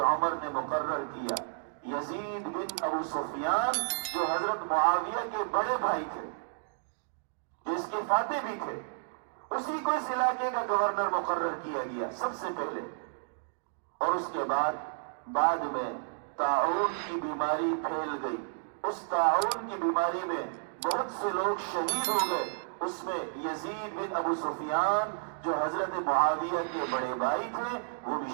عمر نے مقرر کیا، یزید بن ابو سفیان، جو حضرت معاویہ کے بڑے بھائی تھے، جو اس کے فاتح بھی تھے، اسی کو اس علاقے کا گورنر مقرر کیا گیا سب سے پہلے۔ اور اس کے بعد میں طاعون کی بیماری پھیل گئی، اس طاعون کی بیماری میں بہت سے لوگ شہید ہو گئے، اس میں یزید بن ابو سفیان جو حضرت معاویہ کے بڑے بھائی تھے وہ بھی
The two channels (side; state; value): left; silent; digital silence